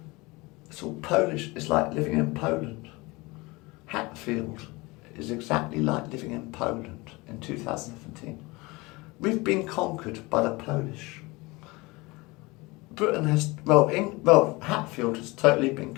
it's all Polish. It's like living in Poland. Hatfield is exactly like living in Poland in 2017. We've been conquered by the Polish. Britain has, Hatfield has totally been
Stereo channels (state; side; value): quieter; right; 23.6 dB